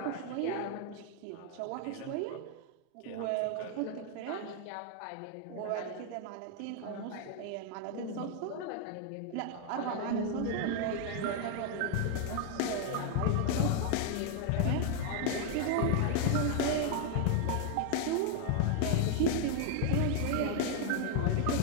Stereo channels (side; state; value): both; different; correlation 0.00